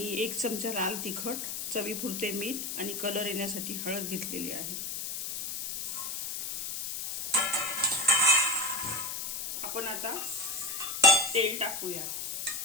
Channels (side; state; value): left; noise; hiss, 4 dB below the sound